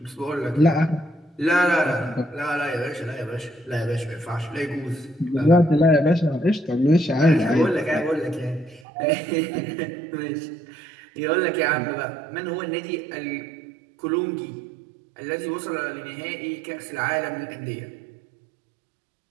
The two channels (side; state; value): left; drops out; at 8.8 s